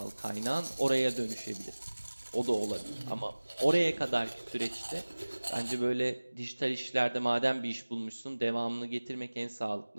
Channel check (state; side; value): inverted; both; correlation -1.00